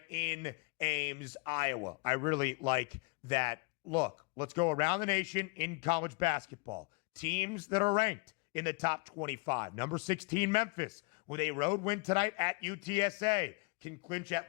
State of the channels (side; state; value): right; quieter; 30.0 dB